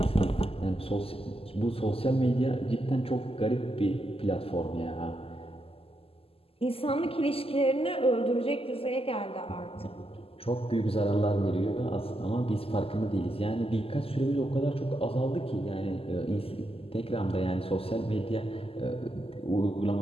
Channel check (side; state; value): right; late; 0.28 ms